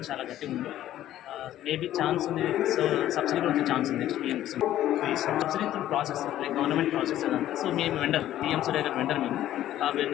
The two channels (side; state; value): right; quieter; 12.9 dB